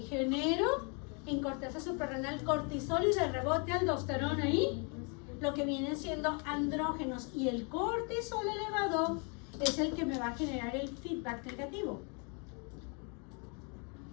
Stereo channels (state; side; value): quieter; right; 35.7 dB